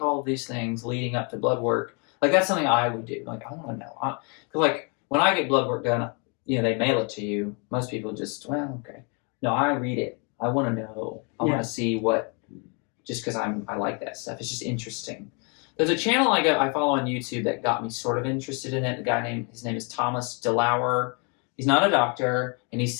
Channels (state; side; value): quieter; right; 35.4 dB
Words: all of these things leading up to blood work? Like that's something I would do. Like I want to know, because like when I get blood work done, they mail it to you. Most people just, well, okay. No, I read it. I want to know. I want to see what. Just because I like that stuff. It's just interesting. There's a channel I follow on YouTube that got me sort of interested in it. His name is Thomas DeLauer. He's not a doctor, and he